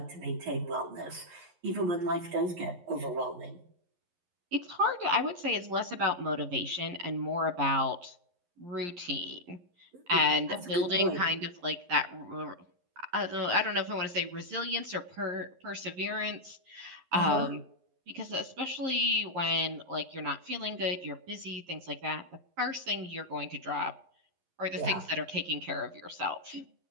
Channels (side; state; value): left; late; 11 ms